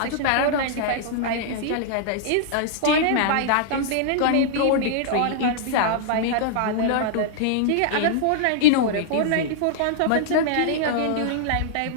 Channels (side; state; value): both; different; correlation -0.01